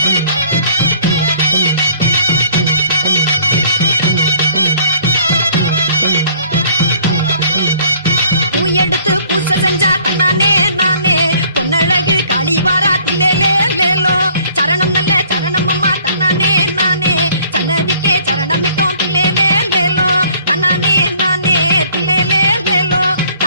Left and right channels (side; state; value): both; inverted; correlation -0.57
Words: எடுத்து பூசை செஞ்சா தன்னானே நானே பொன்னழகு காளிவாரா தில்லேலேலோ சரணம் நல்ல சரணம் அம்மா தன்னானே நானே சன்னதிக்கே சரணமிட்டோம் தில்லேலேலோ தன்னானே நானே தில்லேலேலோ